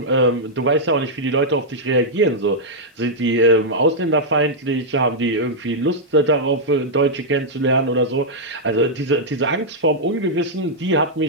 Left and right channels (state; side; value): normal; both; correlation -0.05